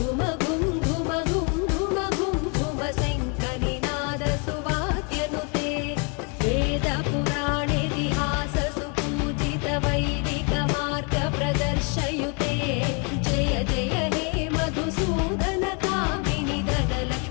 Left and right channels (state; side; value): quieter; right; 35.6 dB